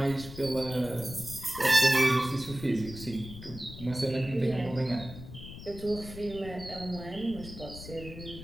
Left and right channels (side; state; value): left; noise; rumble, 13 dB below the sound